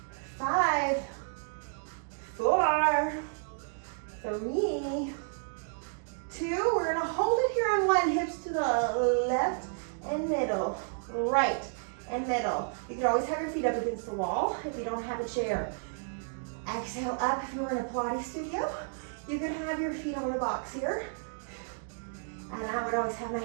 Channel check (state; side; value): silent; left; digital silence